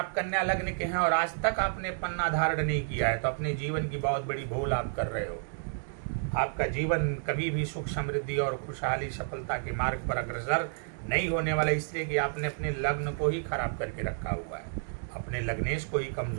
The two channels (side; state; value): left; silent; digital silence